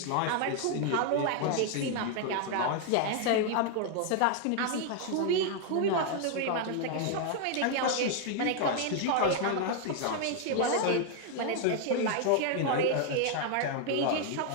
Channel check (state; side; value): different; both; correlation 0.00